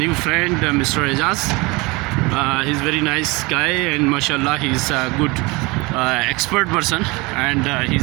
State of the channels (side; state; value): left; quieter; 24.9 dB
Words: friend, Mr. Ejaz. He's very nice guy, and mashallah, he's a good expert person, and